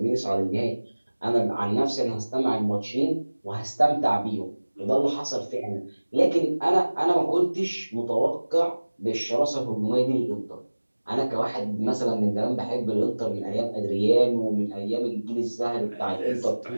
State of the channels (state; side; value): inverted; both; correlation -1.00